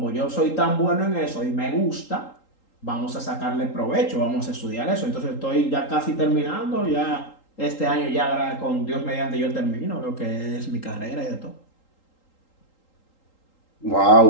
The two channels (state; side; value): late; right; 3.8 ms